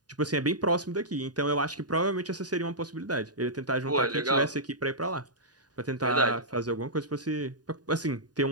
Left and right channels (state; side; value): late; left; 0.69 ms